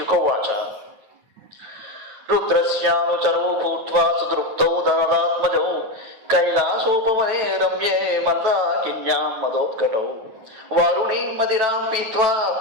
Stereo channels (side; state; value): left; late; 9.5 ms